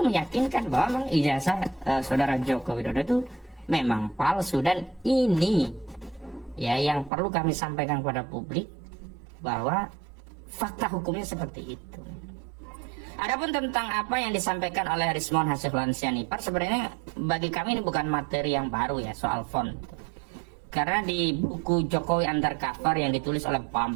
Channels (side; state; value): left; drops out; at 7.1 s